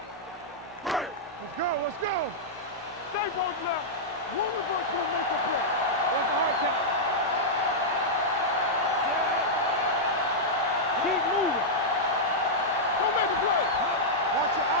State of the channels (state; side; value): normal; both; correlation -0.08